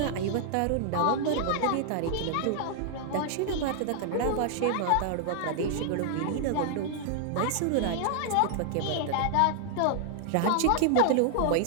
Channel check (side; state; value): both; different; correlation 0.00